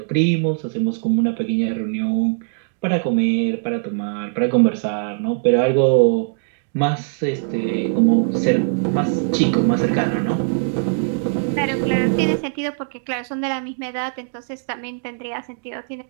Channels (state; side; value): silent; left; digital silence